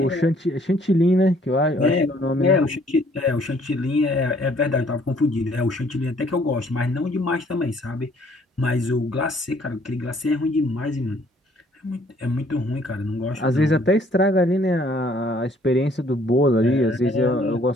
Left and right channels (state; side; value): normal; both; correlation 0.62